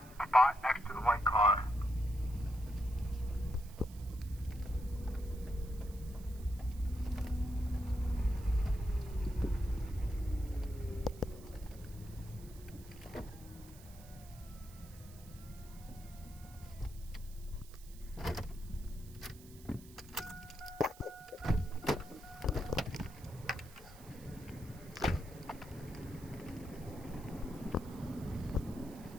spot next to the white car.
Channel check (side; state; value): right; noise; hiss, 21 dB below the sound